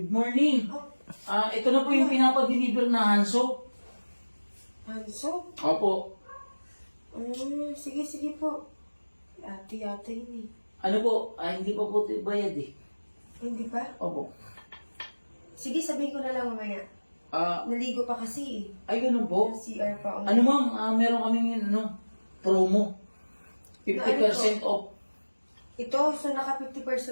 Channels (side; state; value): both; inverted; correlation -1.00